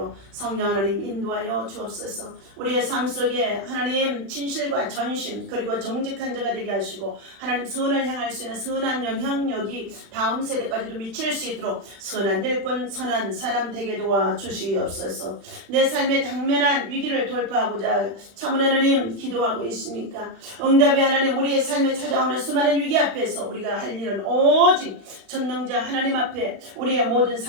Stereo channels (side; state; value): left; late; 36 ms